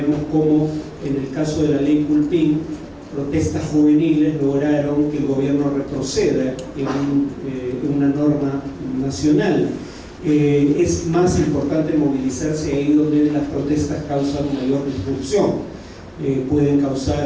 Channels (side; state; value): both; identical; correlation 1.00